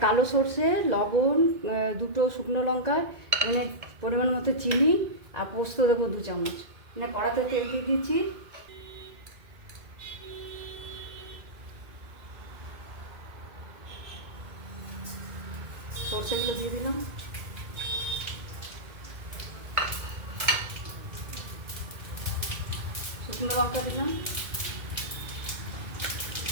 কালো সর্ষে, লবণ, দুটো শুকনো লঙ্কা, এখানে পরিমাণ মতো চিনি আর পোস্ত দেবো 2 চামচ। এখানে কড়াতে তেল দিয়ে দিচ্ছি। সর্ষেগুলো দিয়ে দিলাম, শুকনো লঙ্কা দিলাম,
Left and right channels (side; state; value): left; late; 2.2 ms